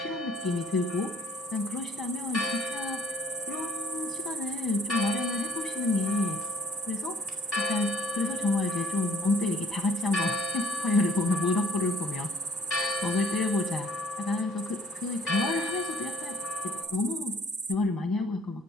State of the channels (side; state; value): both; normal; correlation 0.58